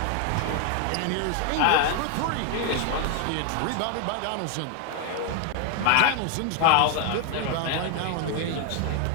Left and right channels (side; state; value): both; different; correlation 0.00